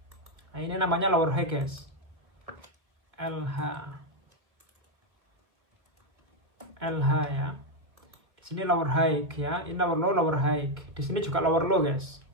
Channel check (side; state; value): left; late; 2.0 ms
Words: Nah, ini namanya lower high guys. LH ya. Di sini lower high ya. Ini lower low, lower high. Di sini juga lower low guys.